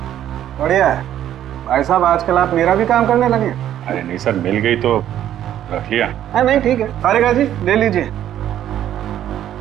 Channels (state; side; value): quieter; left; 11.3 dB